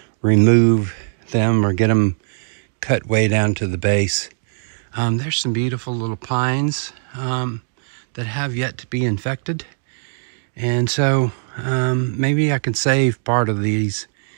remove them or get them cut way down to the base. There's some beautiful little pines that have yet to be infected. And so maybe I can save part of these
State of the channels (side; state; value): left; silent; digital silence